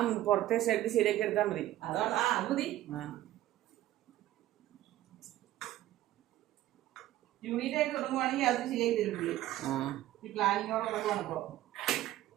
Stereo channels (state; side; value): quieter; left; 14.4 dB